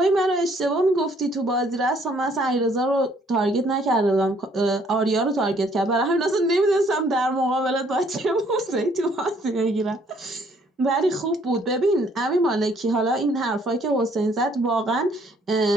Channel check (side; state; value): both; normal; correlation 0.63